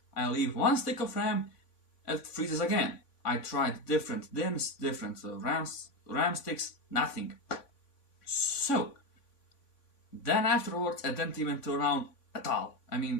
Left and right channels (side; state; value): right; late; 3.5 ms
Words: I leave one stick of RAM, it freezes again. I tried different DIMMs, different RAM sticks, nothing. So, then afterwards it didn't even turn on at all. I